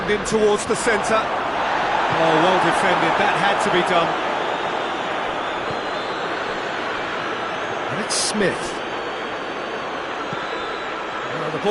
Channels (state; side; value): identical; both; correlation 1.00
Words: in towards the centre. Oh, well defended. That had to be done. And it's Smith. Oh, the